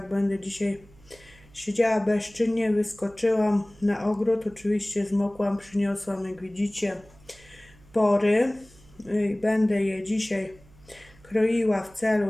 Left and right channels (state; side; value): noise; right; hum, 26 dB below the sound